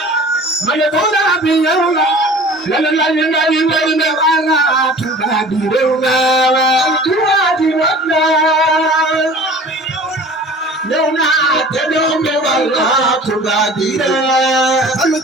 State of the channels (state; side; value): normal; both; correlation 0.44